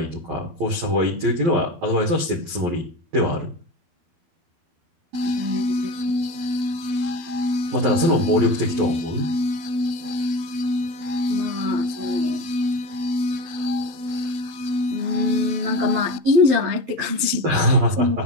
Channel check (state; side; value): late; left; 12 ms